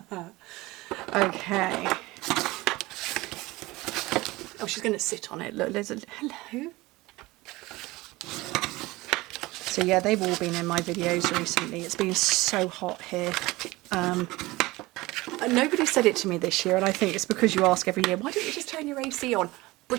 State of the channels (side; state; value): left; quieter; 20.5 dB